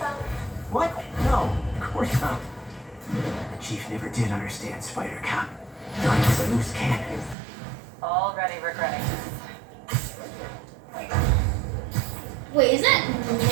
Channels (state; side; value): drops out; left; at 7.4 s